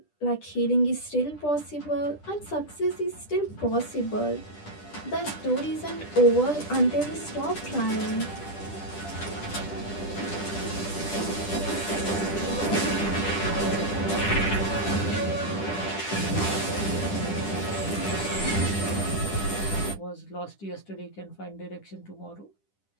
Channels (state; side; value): late; right; 10 ms